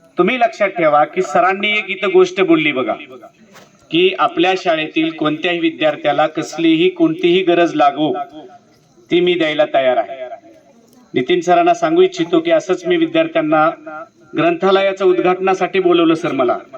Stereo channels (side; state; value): both; identical; correlation 1.00